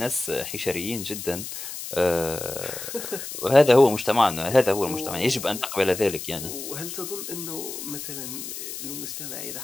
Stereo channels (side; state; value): left; noise; hiss, 8 dB below the sound